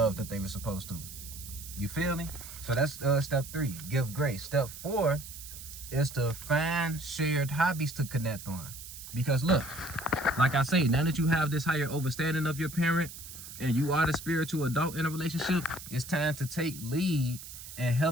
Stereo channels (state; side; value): noise; right; hiss, 13 dB below the sound